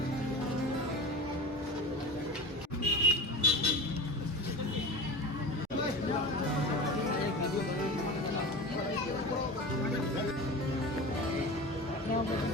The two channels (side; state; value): both; normal; correlation 0.31